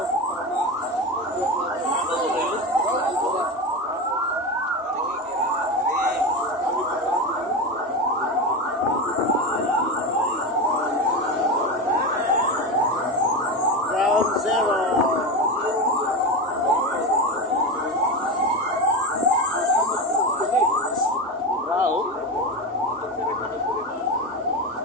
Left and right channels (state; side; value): normal; both; correlation 0.20